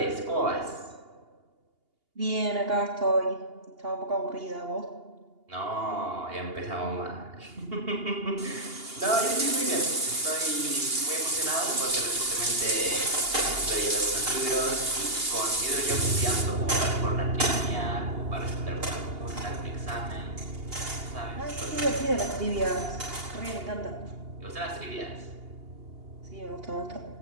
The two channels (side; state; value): left; late; 2.8 ms